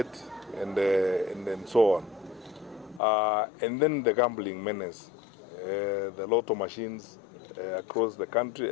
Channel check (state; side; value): drops out; right; at 3.0 s